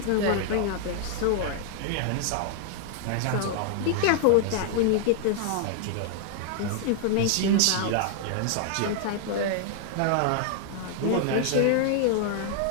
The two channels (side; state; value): both; different; correlation 0.00